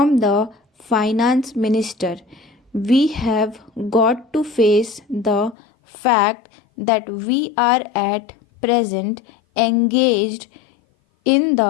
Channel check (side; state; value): right; drops out; at 5.6 s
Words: the finance minister. We have got to face the fact that we are at present engaged in